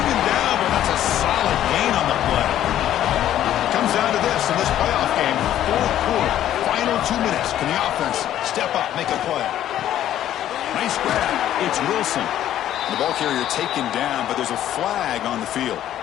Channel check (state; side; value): quieter; right; 11.9 dB